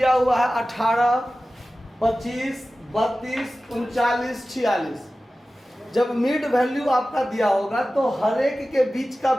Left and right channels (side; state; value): both; normal; correlation 0.95